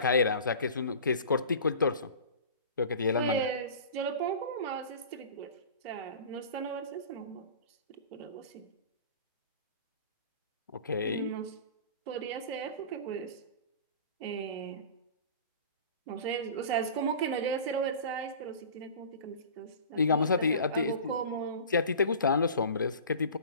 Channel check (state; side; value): inverted; both; correlation -0.39